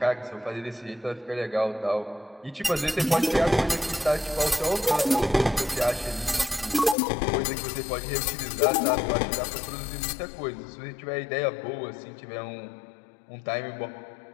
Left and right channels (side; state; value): right; drops out; at 7.0 s